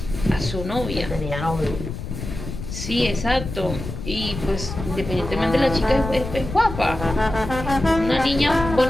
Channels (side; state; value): left; noise; rumble, 8 dB below the sound